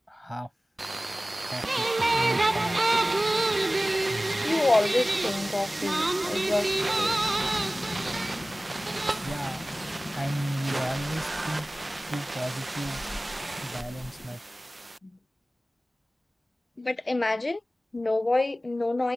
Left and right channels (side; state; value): both; normal; correlation 0.97